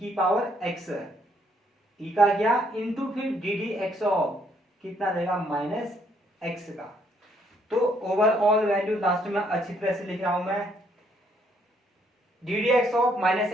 पावर x, e का क्या इनटू फिर ddx ऑफ कितना देगा माइनस x का। तो ओवरऑल वैल्यू लास्ट में अच्छी तरह से लिख रहा हूं मैं, ddx ऑफ माइनस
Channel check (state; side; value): normal; both; correlation 0.69